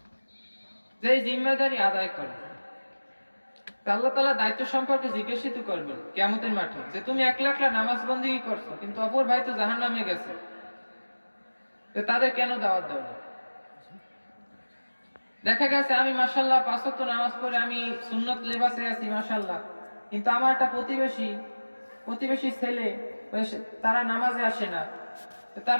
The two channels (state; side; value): inverted; both; correlation -1.00